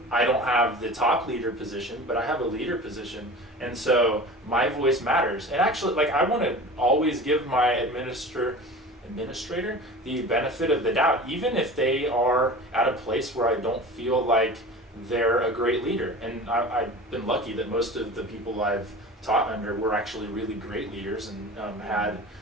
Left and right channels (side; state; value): both; normal; correlation 0.36